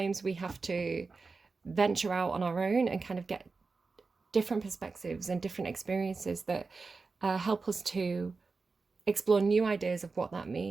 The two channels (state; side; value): quieter; left; 4.2 dB